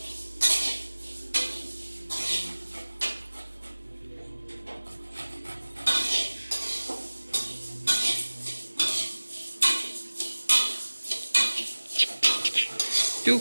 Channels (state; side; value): inverted; both; correlation -1.00